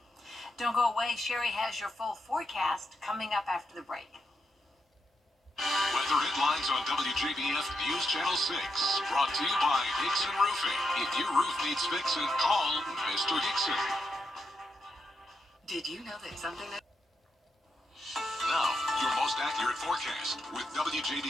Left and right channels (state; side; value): normal; both; correlation 0.83